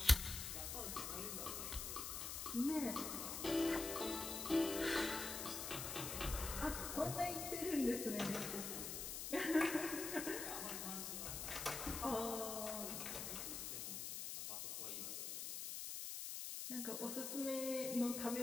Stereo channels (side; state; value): left; noise; hiss, 4 dB below the sound